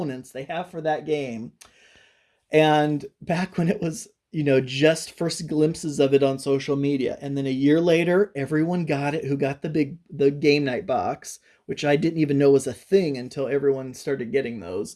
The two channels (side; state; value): both; identical; correlation 1.00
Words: they have for that game. And back when it was, just first glimpses of it on social media. And then a year later, everyone got it who got the game night box, which I didn't even know was a thing until everyone started getting those.